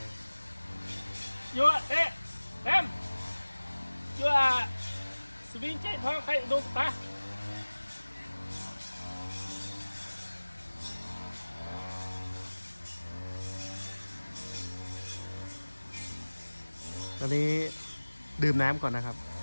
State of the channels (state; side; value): inverted; both; correlation -1.00